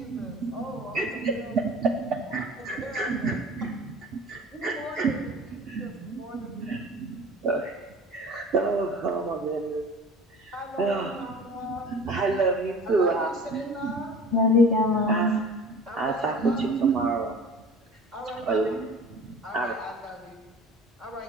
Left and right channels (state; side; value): normal; both; correlation 0.42